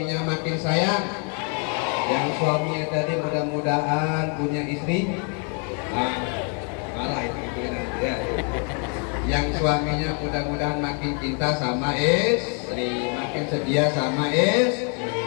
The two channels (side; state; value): right; quieter; 39.3 dB